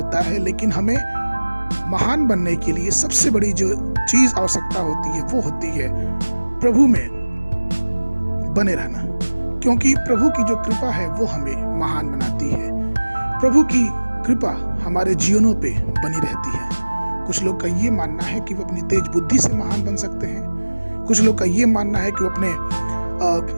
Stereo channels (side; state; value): both; inverted; correlation -1.00